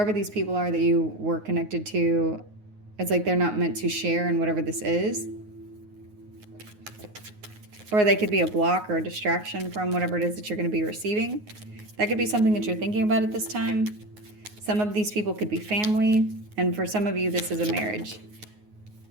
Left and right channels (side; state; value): left; late; 9.5 ms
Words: these people are that you were connected to, it's like they're not meant to share in whatever this is. Or they could be a block or a distraction from whatever it is that you're going to be receiving. That could be something that you're thinking about at this time. Some of these people could be family, and for some of you, this is a marriage.